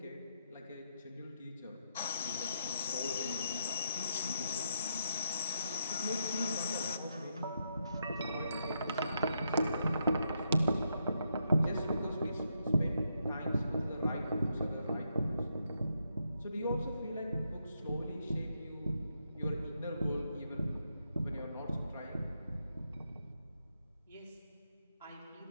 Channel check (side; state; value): both; inverted; correlation -0.80